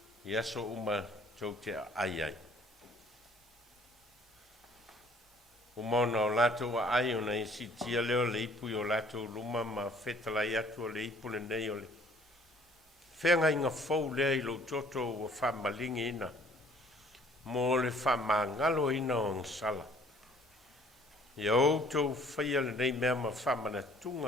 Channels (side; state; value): both; normal; correlation 0.57